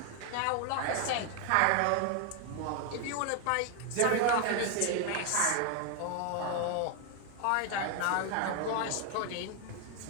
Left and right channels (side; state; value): both; different; correlation 0.01